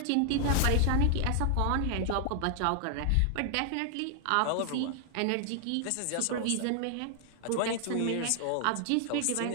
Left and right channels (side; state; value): both; different; correlation 0.00